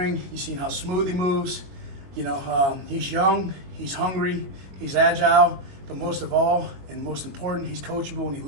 You see how smooth he moves. You know, he's young, he's hungry, he's agile, but most of all, and most important, he's coachable and he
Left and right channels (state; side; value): late; left; 22 ms